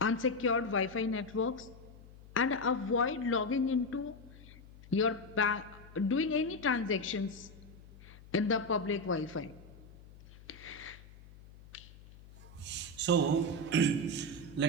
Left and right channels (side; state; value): left; noise; hum, 20 dB below the sound